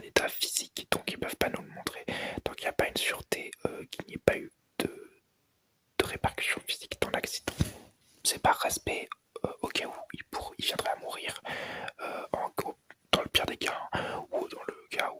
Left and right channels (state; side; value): identical; both; correlation 1.00